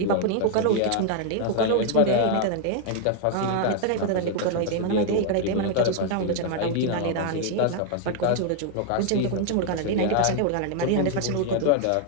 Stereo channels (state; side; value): different; both; correlation 0.00